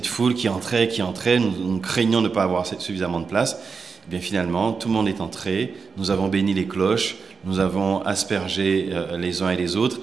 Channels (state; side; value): quieter; left; 5.2 dB